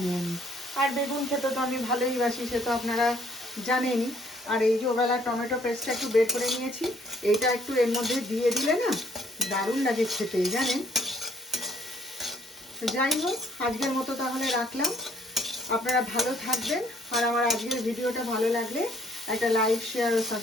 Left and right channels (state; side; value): normal; both; correlation 0.63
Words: নিই। আর বেগুন খেতে তো আমি ভালোই বাসি, সে তো আপনারা জানেনই। আর এই যে ওবেলা টমেটো পেস্টটা একটু বের করে নিয়েছি, এইটা একটু এর মধ্যে দিয়ে দিলে না দারুণ লাগে খেতে, জানেন। যাই হোক, আজকের মতো তাহলে রাখলাম, আপনারা ভালো থাকবেন। আর আমার আজকের ভিডিওটা ভালো লাগলে একটা লাইক, শেয়ার ও